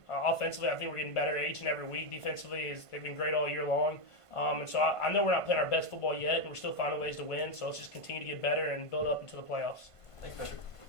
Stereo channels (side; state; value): right; late; 1.5 ms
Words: Offensively, I think we're getting better each and every week. Defensively, they've been great all year long. And so I know we're not playing our best football yet, and we're still finding ways to win. So let's just continue to get better and build up into the playoffs. Thanks, Patrick.